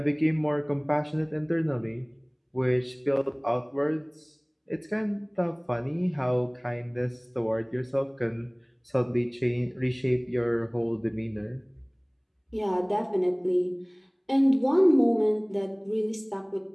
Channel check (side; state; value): both; identical; correlation 1.00